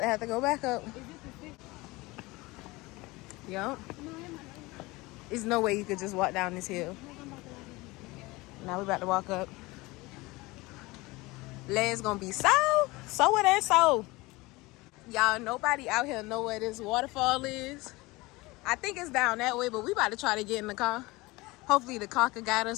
have to go back up. Yup. There's no way you could just walk down this hill. Now we about to walk up. Legs gonna be so it ain't so. Y'all, nobody out here know where this waterfall is. I think it's down that way, but we about to try to get in the car. Hopefully the car can guide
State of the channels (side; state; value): right; quieter; 22.1 dB